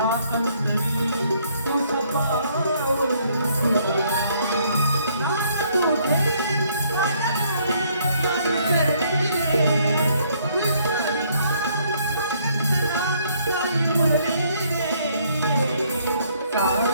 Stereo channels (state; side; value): inverted; both; correlation -0.67